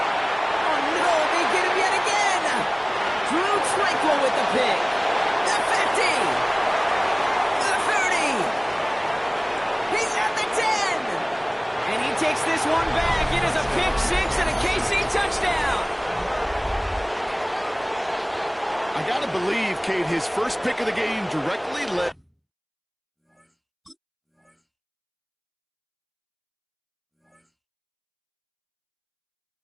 no, they get him yet again. Drew Tranquil with the pick. The 50. The 30. He's at the 10. And he takes this one back. It is a pick 6 and a KC touchdown. I got to believe, Kate, his first pick of the game directly led.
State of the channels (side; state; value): both; identical; correlation 1.00